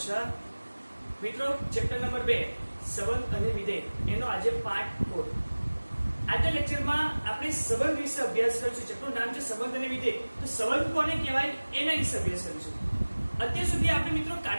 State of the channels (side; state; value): both; inverted; correlation -1.00